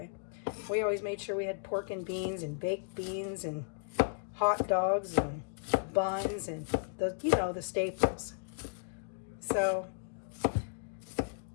We always made sure we had pork and beans and baked beans and hot dogs and buns and the staples. So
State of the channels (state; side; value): silent; right; digital silence